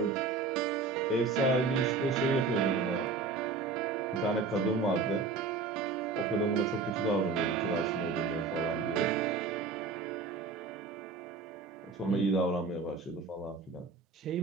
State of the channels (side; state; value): left; quieter; 4.3 dB